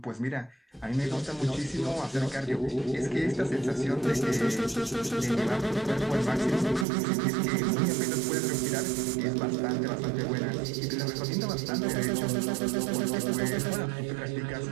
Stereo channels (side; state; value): left; drops out; at 6.9 s